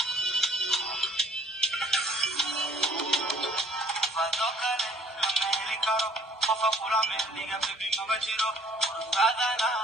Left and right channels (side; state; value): both; normal; correlation 0.57